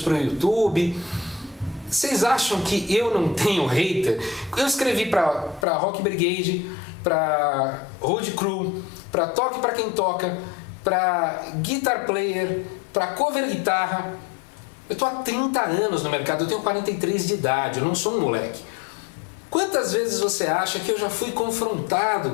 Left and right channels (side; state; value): right; drops out; at 5.7 s